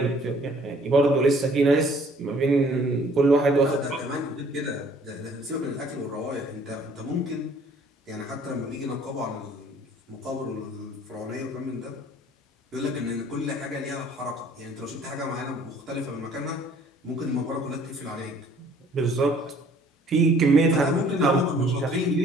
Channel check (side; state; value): both; normal; correlation 0.57